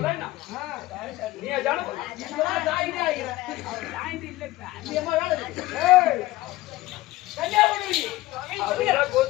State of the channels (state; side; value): quieter; right; 17.7 dB